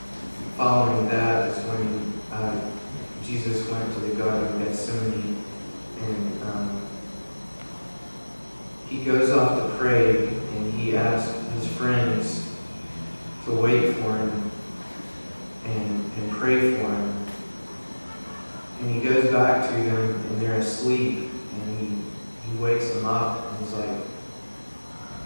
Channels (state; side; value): inverted; both; correlation -1.00